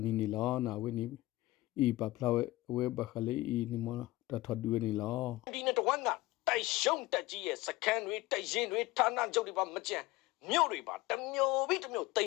နီနီလာနာဝဲနီဤပပလာဝဲဘခလေးဤနီမတထဒူနီလာဒီနေ့တော့ကတိုက်ရှုံးတက်ကြီးရဲ့စခန်းတွေတိုက်ရင်တွေဌာနချုပ်တွေပါမကြံမြို့တွေပါတမျိုးပြီးတမျိုးတိမ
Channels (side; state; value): right; quieter; 18.8 dB